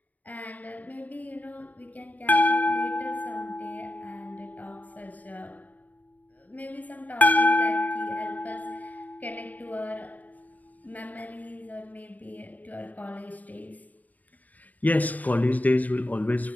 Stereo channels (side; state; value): right; late; 0.077 ms